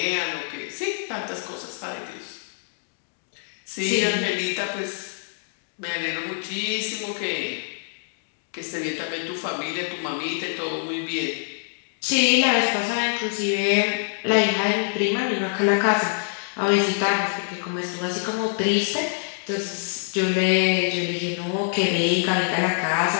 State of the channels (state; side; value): silent; right; digital silence